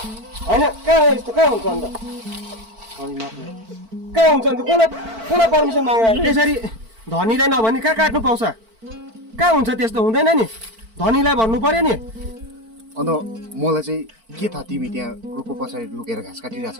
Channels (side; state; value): left; late; 4.5 ms